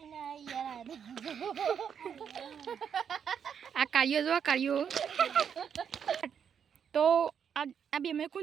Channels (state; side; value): quieter; left; 7.7 dB